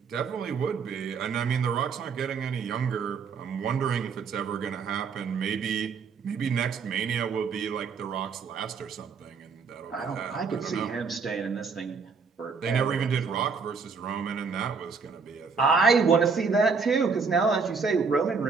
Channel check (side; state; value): left; quieter; 5.2 dB